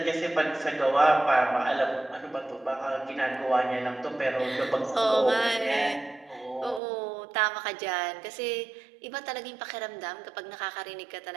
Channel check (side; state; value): left; drops out; at 6.8 s